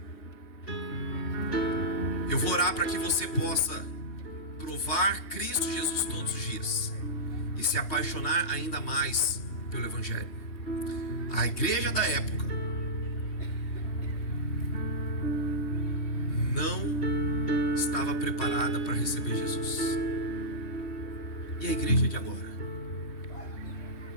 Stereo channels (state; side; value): late; right; 3.1 ms